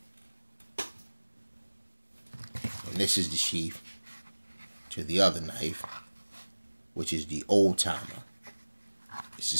And this is the sheath to the other knife, which is the Old Timer. It's the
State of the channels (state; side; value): inverted; both; correlation -1.00